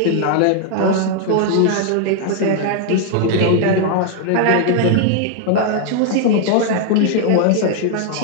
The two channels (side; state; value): both; different; correlation 0.00